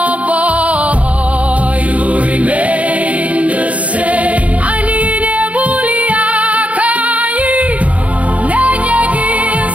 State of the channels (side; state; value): left; late; 0.066 ms